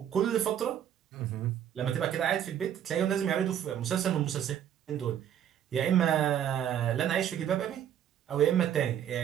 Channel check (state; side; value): quieter; left; 9.9 dB